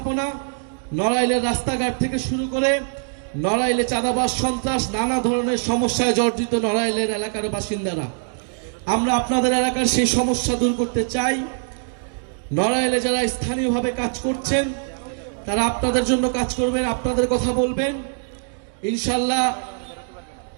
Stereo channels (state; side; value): silent; left; digital silence